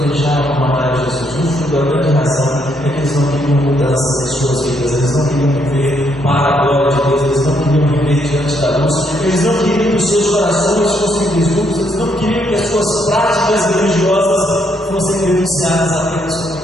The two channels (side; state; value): both; normal; correlation 0.73